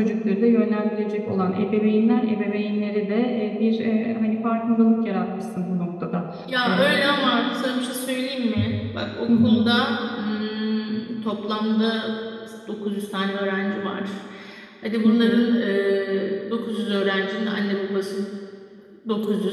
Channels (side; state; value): both; identical; correlation 1.00